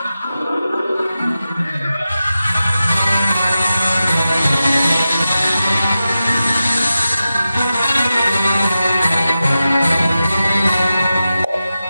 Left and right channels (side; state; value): both; inverted; correlation -0.92